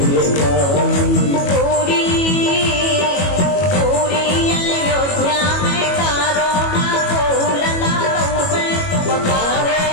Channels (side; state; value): right; late; 22 ms